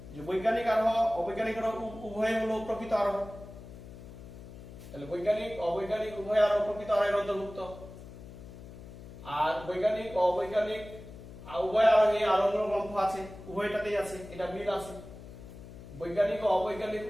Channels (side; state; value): left; noise; hum, 15 dB below the sound